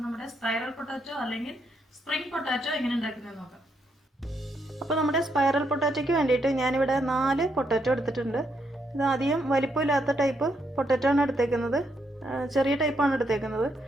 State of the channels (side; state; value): both; normal; correlation 0.77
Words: നമ്മുടെ സ്പൈറൽ പൊട്ടാറ്റോ അല്ലെങ്കിൽ സ്പ്രിംഗ് പൊട്ടാറ്റോ എങ്ങനെ ഉണ്ടാക്കുന്നത് നോക്കാം. അപ്പോൾ നമ്മുടെ സ്പൈറൽ പൊട്ടാറ്റോയ്ക്ക് വേണ്ടിയിട്ട് ഞാനിവിടെ 4 പൊട്ടാറ്റോ എടുത്തിട്ടുണ്ട്. ഇത് അധികം വലിപ്പമില്ലാത്ത ടൈപ്പ് പൊട്ടാറ്റോ ആണ് എടുത്തേക്കുന്നത്. ചെറിയ ടൈപ്പാണ് എടുത്തേക്കുന്നത്.